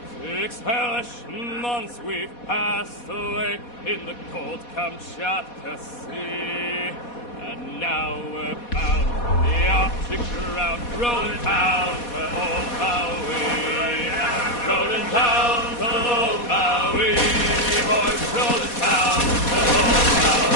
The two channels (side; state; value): right; late; 4.2 ms